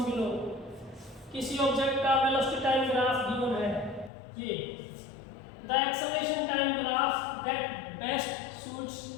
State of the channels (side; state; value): right; drops out; at 4.1 s